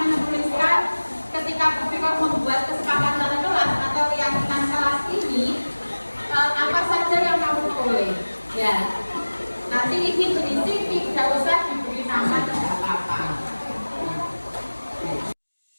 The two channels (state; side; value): inverted; both; correlation -1.00